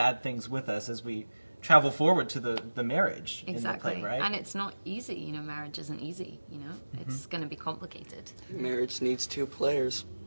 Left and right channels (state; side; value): inverted; both; correlation -1.00